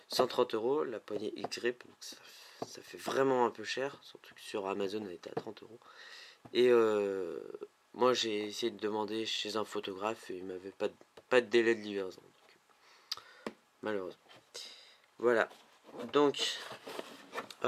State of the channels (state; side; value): identical; both; correlation 1.00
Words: 130 € la poignée X-Grip, donc ça fait vraiment un peu cher, surtout que sur Amazon elle était à 30 €. Et moi j'ai essayé de demander chez un photographe et il m'avait pas de délai de livraison, donc, malheureusement. Voilà, donc